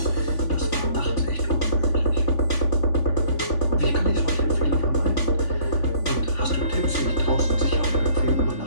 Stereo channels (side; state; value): right; late; 3.5 ms